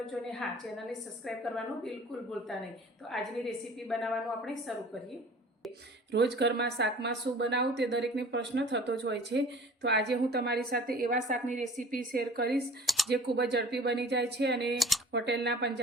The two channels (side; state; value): both; normal; correlation 0.46